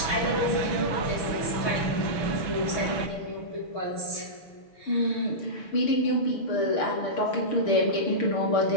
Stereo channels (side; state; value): right; late; 6.7 ms